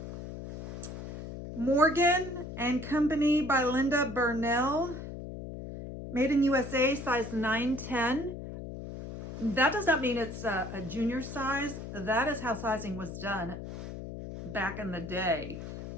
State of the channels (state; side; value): noise; left; hum, 9 dB below the sound